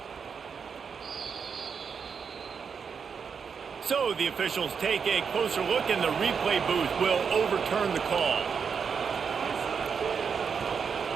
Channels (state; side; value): quieter; left; 6.3 dB